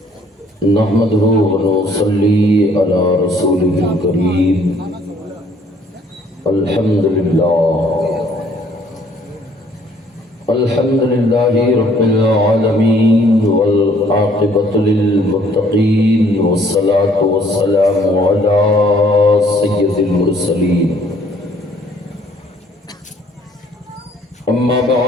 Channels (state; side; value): normal; both; correlation 0.61